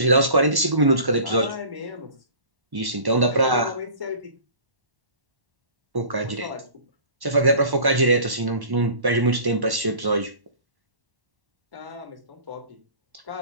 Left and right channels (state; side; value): late; left; 1.1 ms